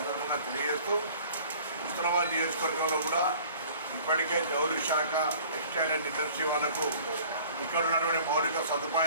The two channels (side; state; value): both; inverted; correlation -0.49